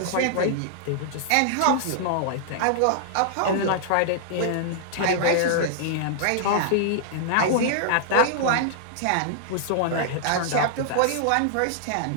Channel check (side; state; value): both; different; correlation -0.01